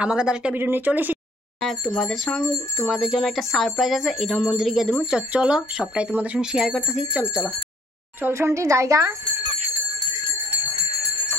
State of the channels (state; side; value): normal; both; correlation 0.63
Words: একটা ভিডিও নিয়ে চলে এসেছি। হ্যাঁ, তোমাদের জন্য একটা সারপ্রাইজ আছে, এটাও মন্দিরে গিয়ে দেবো। চলো সবটাই তোমাদের সঙ্গে শেয়ার করতেছি। চলো চলো চল শুনটি জায়গা